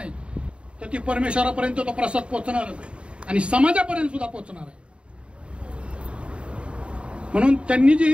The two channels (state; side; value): late; left; 0.057 ms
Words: तर ती परमेश्वरापर्यंत तो प्रसाद पोहोचणारच आहे आणि समाजापर्यंत सुद्धा पोहोचणार आहे. म्हणून त्यांनी जी ही